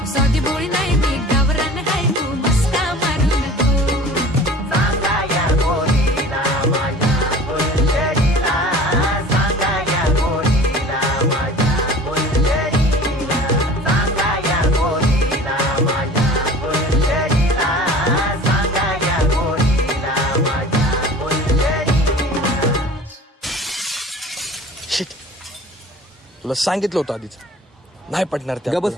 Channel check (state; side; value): normal; both; correlation 0.43